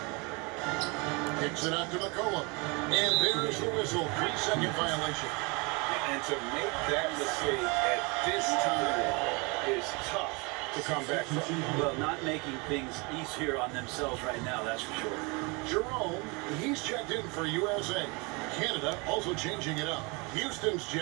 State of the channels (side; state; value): left; quieter; 29.0 dB